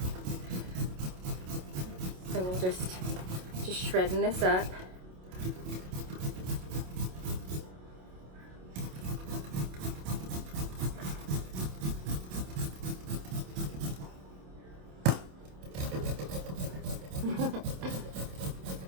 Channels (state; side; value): late; left; 27 ms